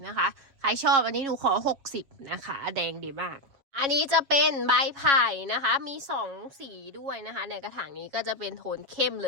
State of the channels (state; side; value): late; left; 7.2 ms